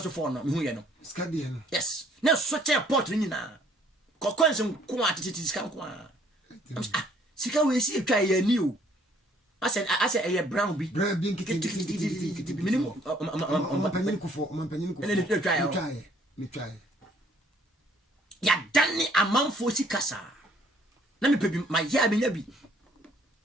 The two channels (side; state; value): both; normal; correlation 0.62